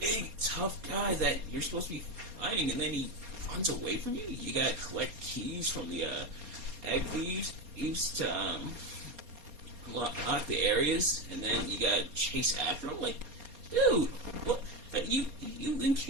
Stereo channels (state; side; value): late; left; 4.3 ms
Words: tough guy that you're supposed to be fighting, and then he runs away from you. You gotta collect keys from the egg thieves to lock the areas, and then you gotta chase after him. Like, dude, what? You